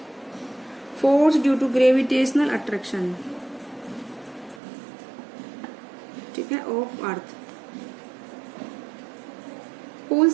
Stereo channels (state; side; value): drops out; left; at 4.6 s